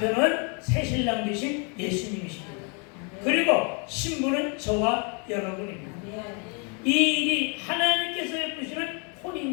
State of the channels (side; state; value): right; quieter; 36.2 dB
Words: 새신랑 되신 예수님이십니다. 그리고 신부는 저와 여러분입니다. 이 일이 하나님께서 베푸시는